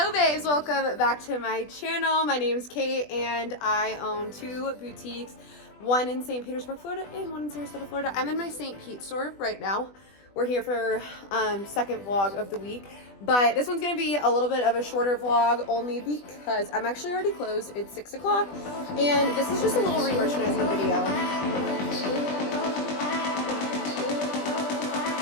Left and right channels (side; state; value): right; late; 20 ms